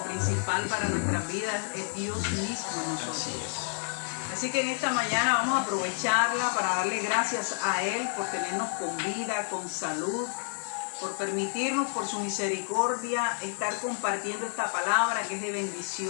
principal para nuestras vidas es Dios mismo en nosotros. Así que en esta mañana vamos a aprovecharla para darle gracias a Él por tenernos con vida, con salud, por permitirnos, por su misericordia, estar compartiendo esta palabra que es de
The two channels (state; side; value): silent; right; 58 dB below the other